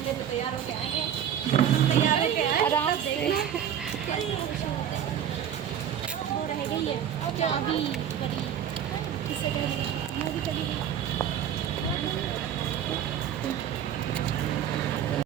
डे पे तैयार होके आएंगे। तैयार होके आए आराम से। वो रह गई है चाबी परी किसे कह रही है वो भी चली गई।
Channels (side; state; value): left; quieter; 9.5 dB